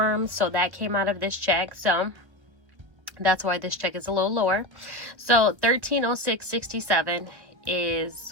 so that came out of this check. So that's why this check is a little lower. So $13.06.67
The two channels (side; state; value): left; late; 1.5 ms